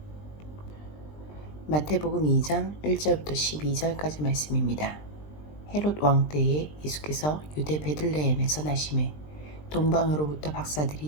마태복음 2장 1절부터 12절까지 말씀입니다. 헤롯 왕 때에 예수께서 유대 베들레헴에서 나심에 동방으로부터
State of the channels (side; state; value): right; late; 20 ms